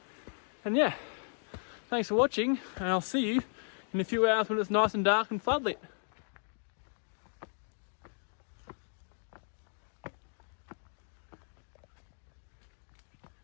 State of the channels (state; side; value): silent; right; digital silence